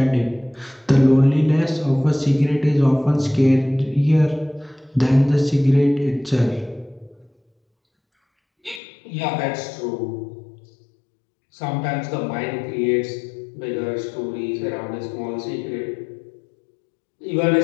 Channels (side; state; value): right; drops out; at 8.8 s